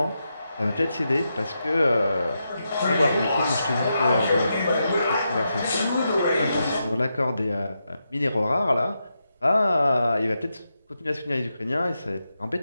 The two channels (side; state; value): both; inverted; correlation -0.86